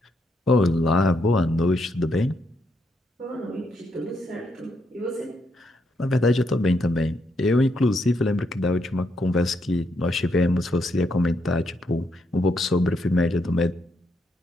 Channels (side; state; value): both; normal; correlation 0.78